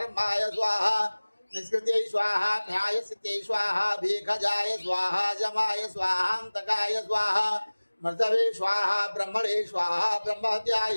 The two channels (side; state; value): both; inverted; correlation -1.00